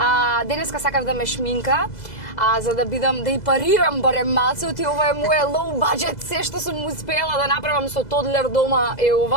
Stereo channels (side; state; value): right; late; 2.0 ms